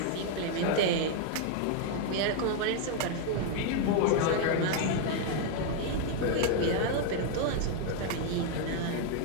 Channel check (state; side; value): different; both; correlation 0.01